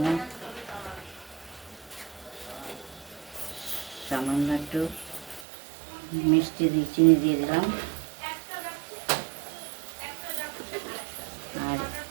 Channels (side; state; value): left; drops out; at 5.5 s